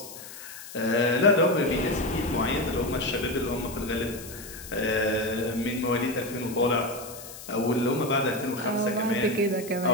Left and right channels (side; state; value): left; noise; hiss, 14 dB below the sound